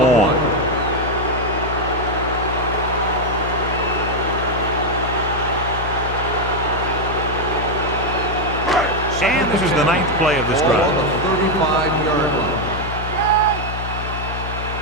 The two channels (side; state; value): left; noise; hum, 6 dB below the sound